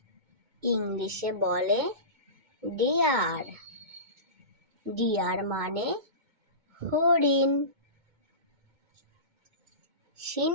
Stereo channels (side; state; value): left; late; 2.2 ms